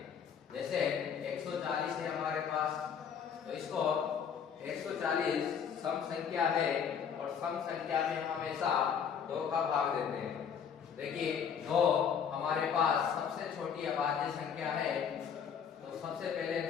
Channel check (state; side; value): quieter; right; 7.4 dB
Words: जैसे 140 है हमारे पास, तो इसको 140 सम संख्या है और सम संख्या में हमेशा 2 का भाग देते हैं। देखिए 2 हमारे पास सबसे छोटी अभाज्य संख्या है, तो सबसे पहले